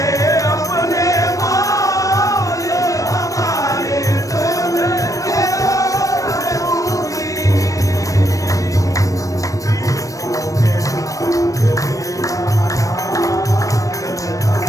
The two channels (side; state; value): right; late; 0.16 ms